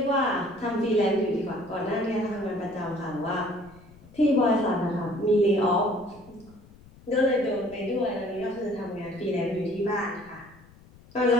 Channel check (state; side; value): noise; left; rumble, 24 dB below the sound